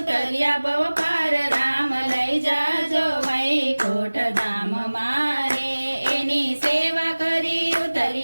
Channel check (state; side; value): inverted; both; correlation -1.00